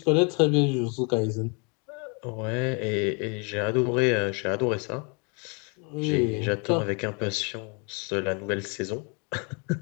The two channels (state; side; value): quieter; right; 33.9 dB